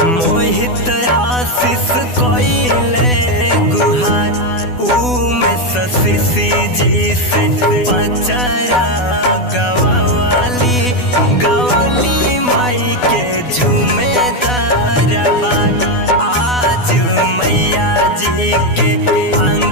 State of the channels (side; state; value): right; late; 12 ms